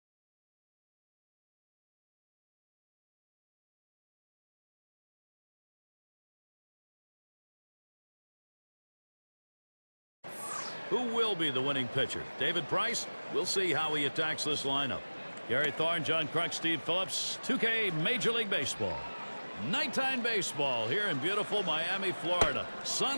Who will be the winning pitcher? David Price? We'll see how he attacks this lineup. Gary Thorne, John Kruk, Steve Phillips, 2K Major League Baseball. Nighttime baseball here in beautiful Miami, Florida.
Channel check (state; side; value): inverted; both; correlation -1.00